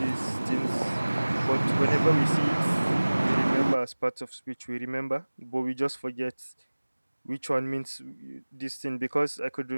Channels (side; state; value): both; inverted; correlation -1.00